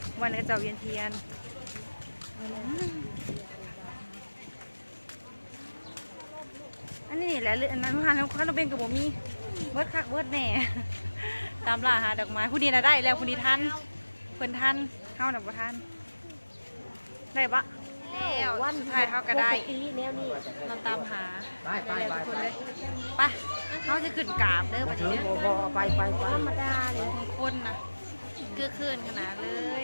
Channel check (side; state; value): both; inverted; correlation -1.00